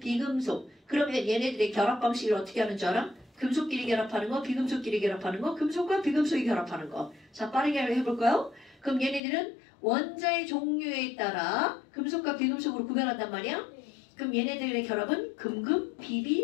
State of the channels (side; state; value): right; drops out; at 9.2 s